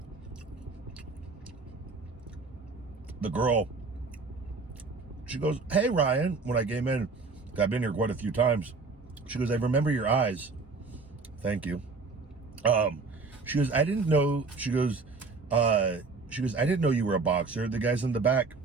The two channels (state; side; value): quieter; left; 4.1 dB